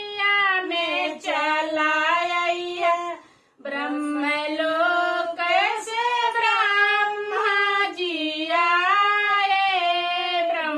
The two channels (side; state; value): both; identical; correlation 1.00